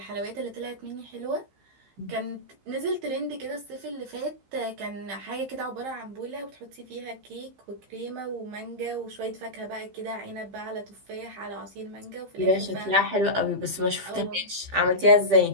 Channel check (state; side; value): late; left; 15 ms